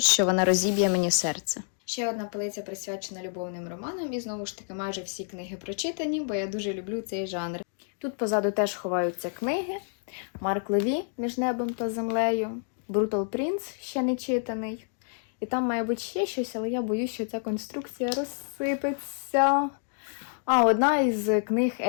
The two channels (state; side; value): silent; right; 59 dB below the other